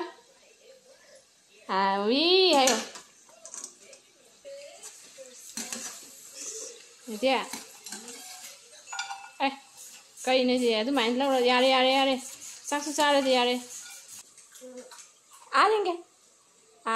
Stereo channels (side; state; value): both; identical; correlation 1.00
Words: ꯍꯥꯎꯋꯤ ꯍꯥꯏꯌꯣ ꯏꯗꯤ ꯑꯦ ꯀꯩꯅꯣꯁꯦ ꯑꯗꯨꯃꯥꯏꯅ ꯂꯧꯔ ꯌꯥꯔꯦ ꯆꯥꯛꯁꯨ ꯆꯥꯔꯗꯤ ꯌꯥꯔꯦ yenge